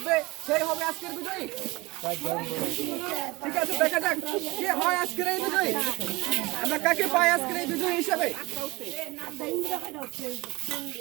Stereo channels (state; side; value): quieter; left; 22.7 dB